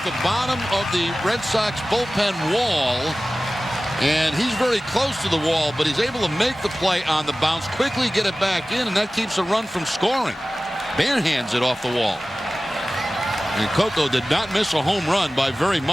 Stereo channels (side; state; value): both; normal; correlation 0.97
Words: the bottom of the Red Sox bullpen wall. And he's very close to the wall, but he's able to make the play on the bounce, quickly get it back in, and that keeps a run from scoring. Barehands it off the wall. And Coco did not miss a home run by very